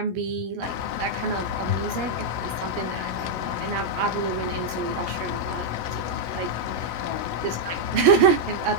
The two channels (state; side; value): late; left; 17 ms